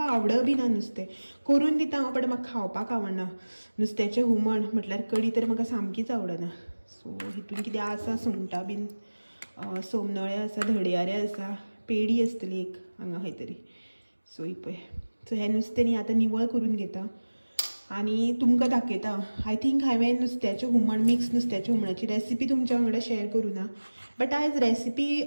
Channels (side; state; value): both; inverted; correlation -1.00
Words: आवड बी ना नुस्तें। करून दिता हांव, बट म्हाका खावपाक आवडना। नुस्त्याचें हुमण म्हटल्यार कडी तर म्हाका सामकीच आवडना। सो हितून कितें आसा, सुंगटां बीन, सोमनळे आसा, धडयारे आसा, पेडी आसतली एक हांगा खंय तरी। सो ही पळय। सो हें नुस्तें न्ही आतां निवळ करून घेता आनी तुमकां दाखयता। आय थिंक हांवें नुस्त्याचें हुमण, मिक्स नुस्त्याच्या हुमणाची रेसिपी तुमच्या वांगडा शेअर करूना, बट आयज रेसिपी